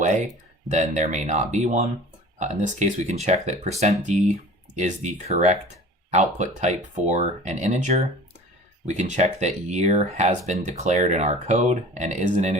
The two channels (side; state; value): both; normal; correlation 0.42